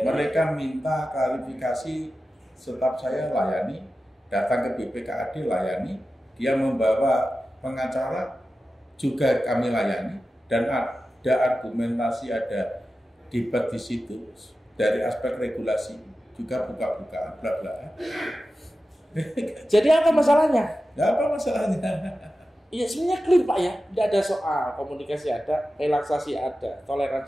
Mereka minta klarifikasi, staf saya layani, datang ke BPKAD layani, dia membawa pengacara juga kami layani, dan ada argumentasi, ada debat di situ dari aspek regulasi juga buka-bukaan bla-bla. Jadi apa masalahnya? Nggak apa masalahnya. Iya sebenarnya clear Pak ya, tidak ada soal, komunikasi ada, relaksasi ada,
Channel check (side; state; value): both; normal; correlation 0.93